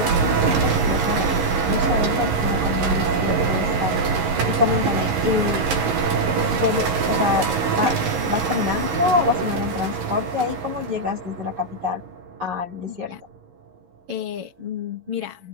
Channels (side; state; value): left; late; 11 ms